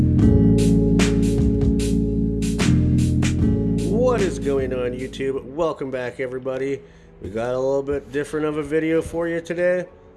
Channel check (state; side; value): identical; both; correlation 1.00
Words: is going on, YouTube? Welcome back, everybody. We got a little bit different of a video for you today.